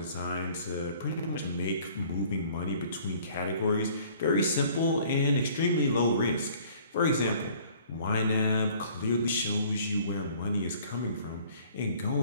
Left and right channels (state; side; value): inverted; both; correlation -0.54